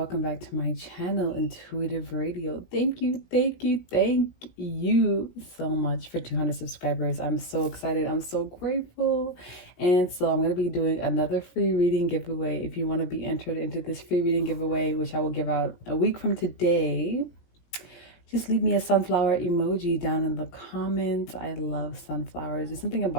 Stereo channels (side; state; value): right; late; 17 ms